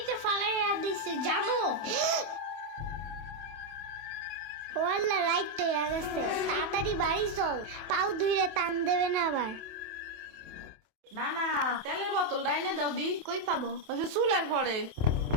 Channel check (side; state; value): left; late; 28 ms